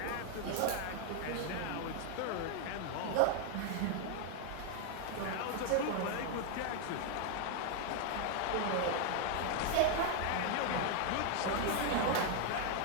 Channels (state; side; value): different; both; correlation 0.00